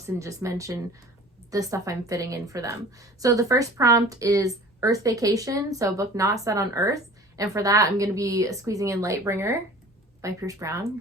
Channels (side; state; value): both; normal; correlation 0.44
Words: and just mention the stuff I'm fitting in for them. So the first prompt is Earth Vacation. So a book not set on Earth. And for that, I'm going to be squeezing in Lightbringer by Pierce Brown,